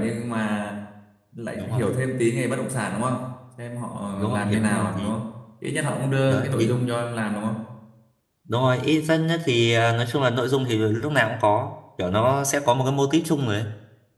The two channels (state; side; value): identical; both; correlation 1.00